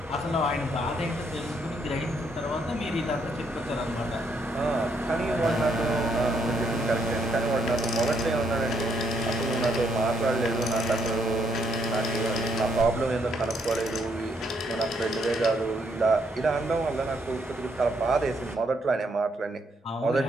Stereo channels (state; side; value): normal; both; correlation 0.73